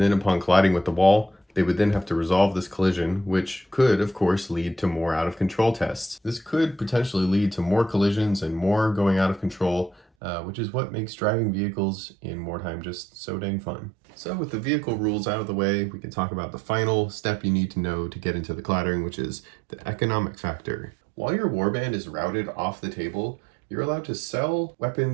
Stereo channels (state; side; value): drops out; left; at 10.0 s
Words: upon colliding with the wall, they would then have to resolve this collision, which could, of course, lead to more out-of-control tests. This could potentially lead to more collisions and more going out of control, which is what makes driving vehicles in Mordheim just so dang fun. So with the vehicle rules out of the way, we can talk about the final step you need to know to get into the clattering, which is the economic factor. While your warband is routed off the table, you're allowed to sell